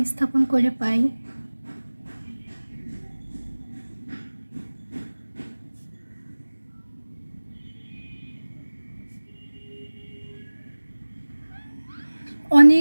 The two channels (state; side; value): inverted; both; correlation -1.00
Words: স্থাপন করে পাই